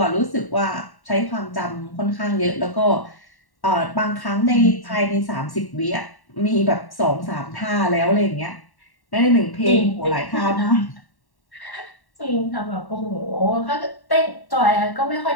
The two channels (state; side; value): late; right; 1.1 ms